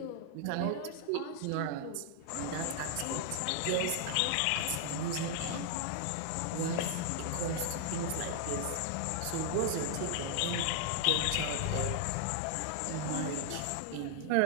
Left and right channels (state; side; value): different; both; correlation 0.00